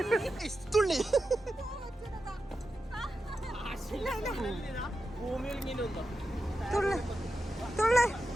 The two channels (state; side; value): normal; both; correlation 0.90